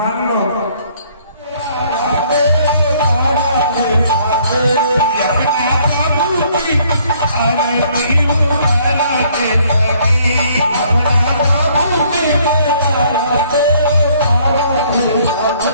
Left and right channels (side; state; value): both; inverted; correlation -0.63